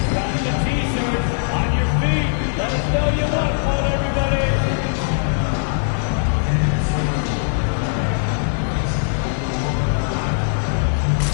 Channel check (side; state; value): right; silent; digital silence